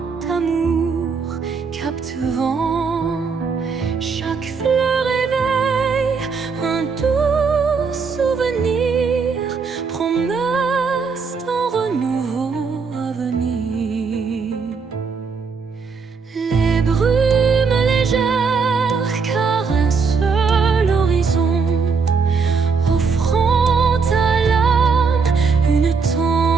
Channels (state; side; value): quieter; left; 5.2 dB